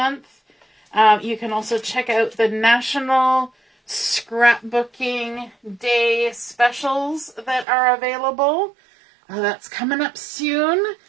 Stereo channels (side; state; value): left; drops out; at 7.7 s